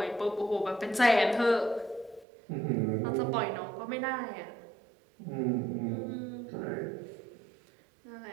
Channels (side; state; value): left; drops out; at 2.2 s